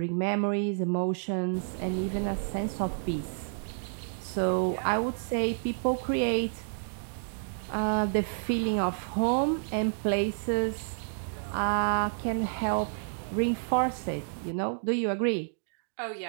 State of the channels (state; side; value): silent; left; digital silence